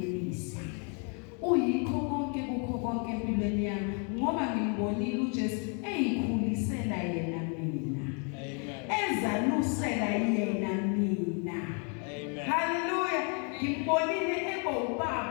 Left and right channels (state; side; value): quieter; right; 38.4 dB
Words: uyikho konke kukho konke empilweni yami ngoba ngimbonile uJesu eyikhulisela yena mina ezalusela yena mina haleluya ngimbonile eba